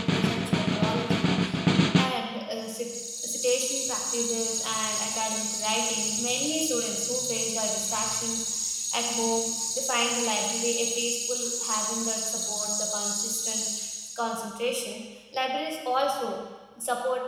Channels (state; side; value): identical; both; correlation 1.00